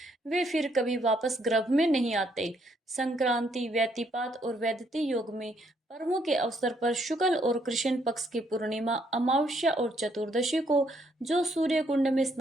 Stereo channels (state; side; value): normal; both; correlation 0.71